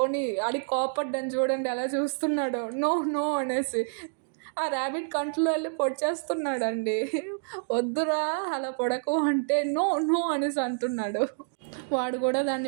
కోపడ్డాను చూడండి, అలా చూస్తున్నాడు నో నో అనేసి. ఆ ర్యాబిట్ కంట్లో వెళ్ళి పొడిచేస్తున్నాడండి, వద్దురా అలా పొడకు అంటే నో నో అనేసి అంటున్నాడు. వాడు కూడా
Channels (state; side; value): silent; left; digital silence